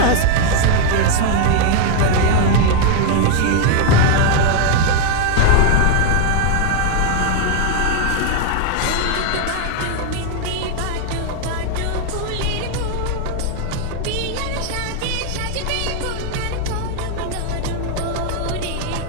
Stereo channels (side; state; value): both; different; correlation 0.00